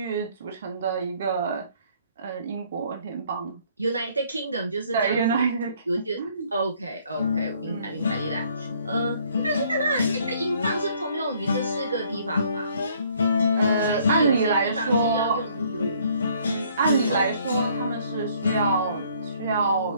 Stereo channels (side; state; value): both; inverted; correlation -0.62